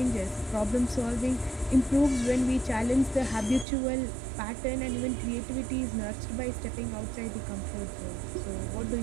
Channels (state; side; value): drops out; left; at 3.7 s